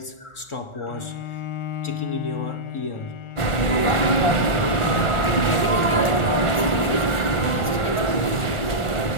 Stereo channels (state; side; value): late; right; 1.4 ms